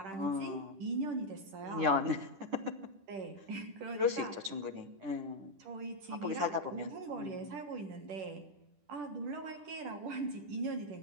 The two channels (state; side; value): late; left; 10 ms